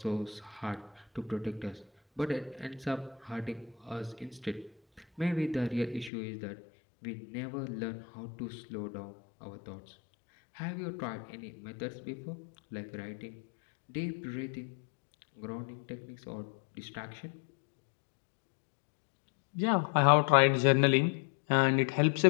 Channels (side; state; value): right; drops out; at 6.1 s